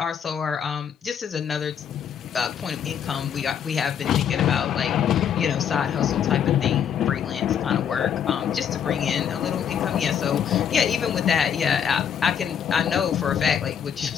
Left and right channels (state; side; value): quieter; right; 8.2 dB